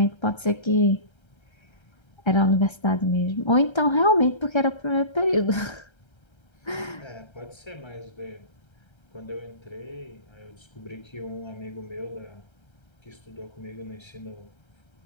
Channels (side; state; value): right; late; 1.3 ms